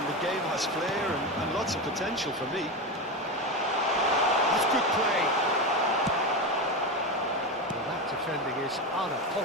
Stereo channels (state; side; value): normal; both; correlation 0.17